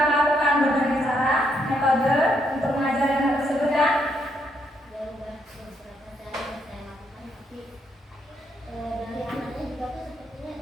melakukan berbagai cara, metode untuk mengajari anak tersebut kan? Ya udah beberapa cara yang saya lakukan tapi dari anaknya juga tuh sepertinya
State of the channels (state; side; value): normal; both; correlation 0.75